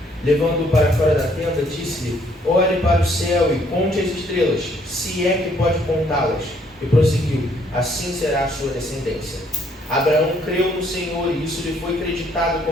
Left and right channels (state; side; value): normal; both; correlation 0.66